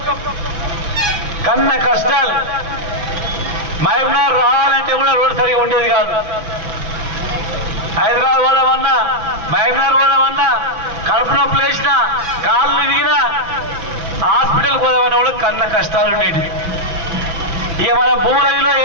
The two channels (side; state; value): left; late; 6.0 ms